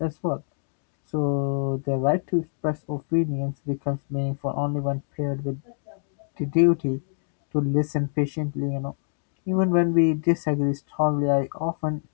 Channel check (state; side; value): silent; right; digital silence